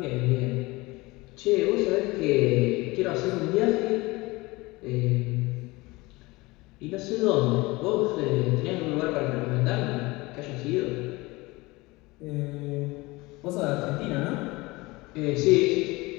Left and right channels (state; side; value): quieter; right; 22.4 dB